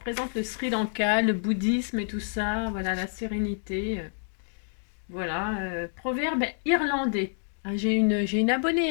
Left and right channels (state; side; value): silent; right; digital silence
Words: le Sri Lanka, le bouddhisme et tout ça. Voilà, la sérénité. Voilà. Proverbe irlandais. Ah, j'ai une abonnée